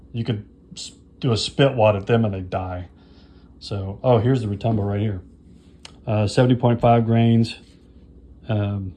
You could do a spit wad at them and they die. So, oh, here's the Retumbo right here. 70.5 grains.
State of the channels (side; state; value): both; identical; correlation 1.00